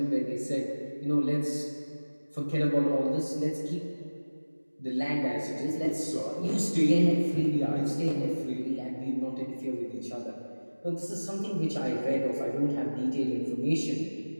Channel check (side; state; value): both; inverted; correlation -1.00